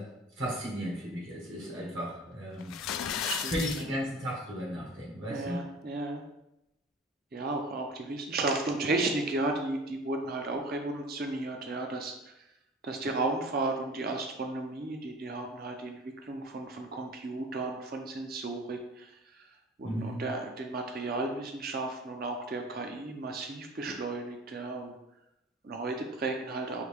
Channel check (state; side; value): normal; both; correlation 0.41